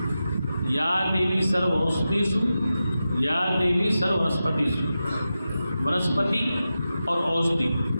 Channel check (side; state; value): both; inverted; correlation -0.92